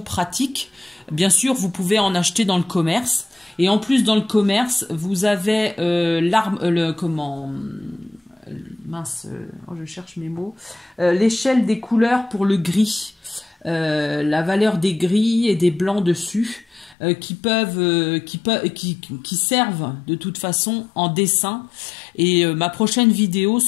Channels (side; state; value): right; drops out; at 16.9 s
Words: Bien sûr, vous pouvez en acheter dans le commerce. Et en plus, dans le commerce, vous avez je cherche mes mots. L'échelle des couleurs pour le gris. La valeur des gris et des blancs dessus. Qui servent de toute façon en dessin. Et ma prochaine vidéo,